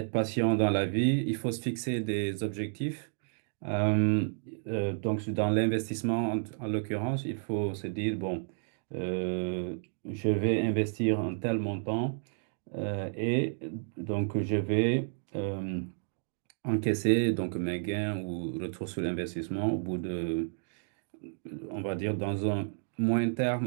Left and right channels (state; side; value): silent; left; digital silence